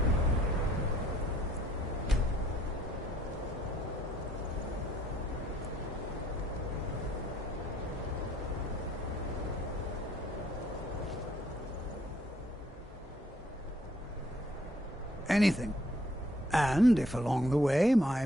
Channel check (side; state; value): both; normal; correlation 0.64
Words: Anything. And if along the way my